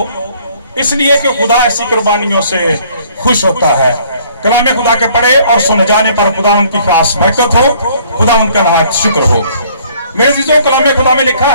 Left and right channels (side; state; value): both; inverted; correlation -0.59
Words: इसलिए कि खुदा ऐसी कुर्बानियों से खुश होता है। कलाम खुदा के पढ़े और सुने जाने पर खुदा उनकी खास बरकत हो, खुदा उनका नहायत शुक्र हो। मेरे अज़ीज़ों, कलाम खुदा में लिखा